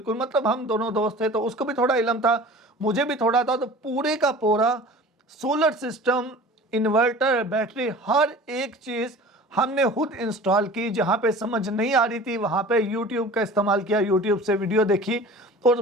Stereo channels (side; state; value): both; normal; correlation 0.41